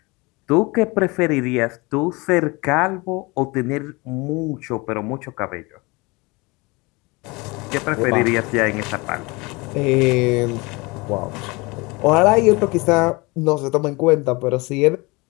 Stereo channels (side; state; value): right; quieter; 25.4 dB